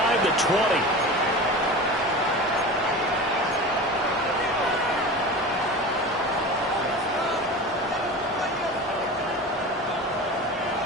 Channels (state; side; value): normal; both; correlation 0.32